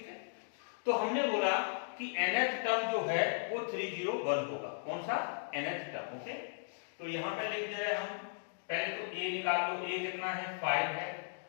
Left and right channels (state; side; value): silent; right; digital silence